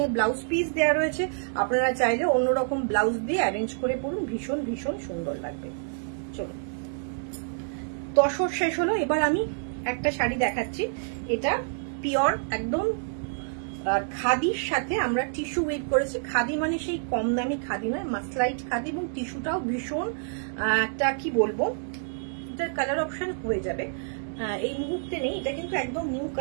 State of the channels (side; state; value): left; silent; digital silence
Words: এ ব্লাউজ পিস দেওয়া রয়েছে, আপনারা চাইলে অন্যরকম ব্লাউজ দিয়ে অ্যারেঞ্জ করে পরুন, ভীষণ ভীষণ সুন্দর লাগবে। চলো, তসর শেষ হলো, এবার আমি একটা শাড়ি দেখাচ্ছি। এটা পিওর একদম খাদির সাথে আমরা টিস্যু ওয়েভ করেছি। খাদি মানে সেই কম দামি খাদি নয়, মাসলাইট খাদি, এবং টিস্যুটাও ভীষণ একটা কি বলবো, এটার কালার অপশন হয়ে যাবে, এই মুহূর্তে নেই, এটা কিন্তু একদম নিউ